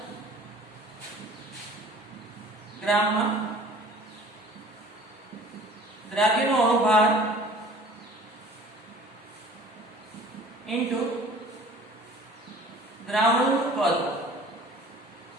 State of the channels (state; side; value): normal; both; correlation 0.48